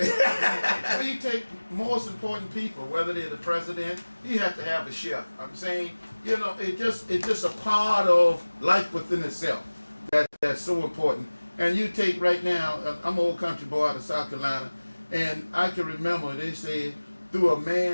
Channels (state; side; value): inverted; both; correlation -1.00